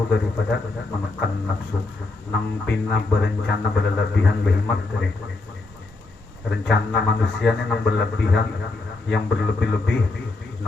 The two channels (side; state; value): right; quieter; 3.3 dB